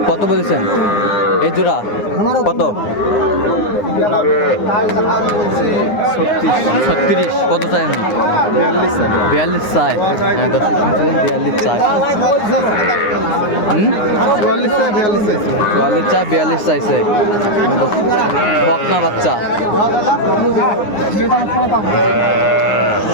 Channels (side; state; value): right; late; 9.7 ms